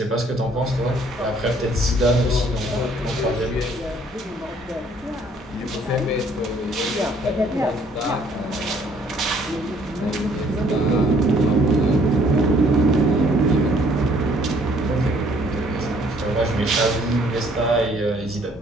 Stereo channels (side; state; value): both; normal; correlation 0.62